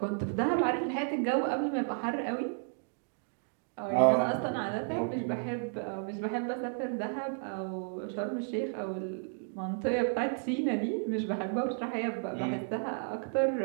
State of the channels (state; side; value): silent; left; 56 dB below the other